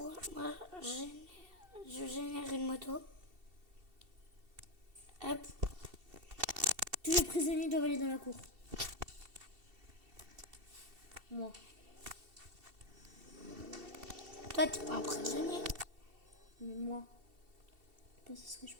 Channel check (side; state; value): left; late; 2.7 ms